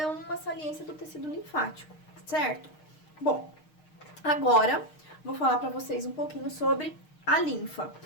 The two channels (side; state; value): right; late; 6.5 ms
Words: uma saliência do tecido linfático, certo? Bom, agora vou falar para vocês um pouquinho sobre a linfa.